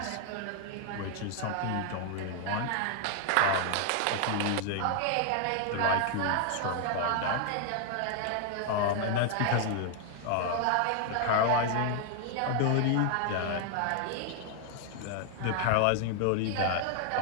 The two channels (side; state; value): both; different; correlation 0.00